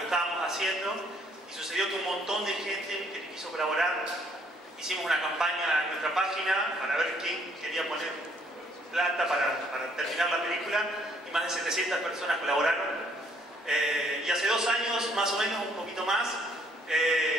estábamos haciendo y sucedió que un montón de gente que quiso colaborar. Hicimos una campaña en nuestra página para ver quién quería poner plata para terminar la película y más de 700 personas colaboraron. Y hace 2 años, más o menos, un poquito más,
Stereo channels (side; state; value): both; normal; correlation 0.65